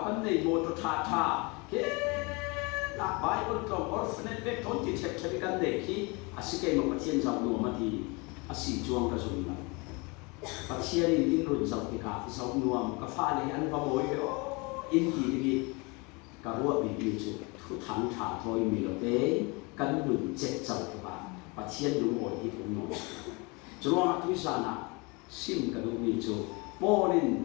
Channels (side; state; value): right; quieter; 28.2 dB